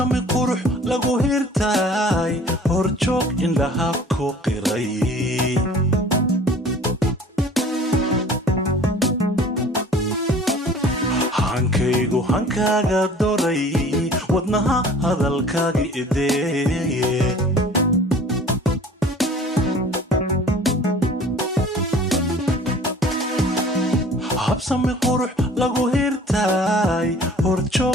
qurux lagu hirtay horjoog indhaha ku qiray hankaygu hankaaga doray wadnaha hadalkaaga idee habsami qurux lagu hirtay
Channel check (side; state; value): both; normal; correlation 0.48